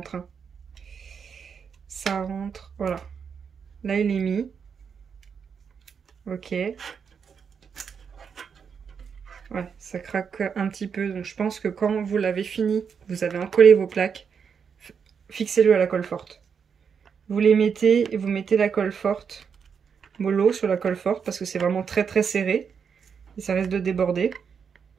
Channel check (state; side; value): quieter; left; 6.6 dB